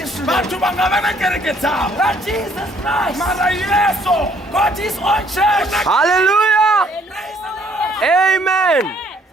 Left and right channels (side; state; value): both; normal; correlation 0.63